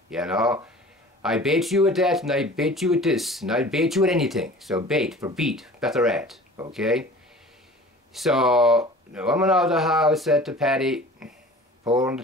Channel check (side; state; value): both; normal; correlation 0.43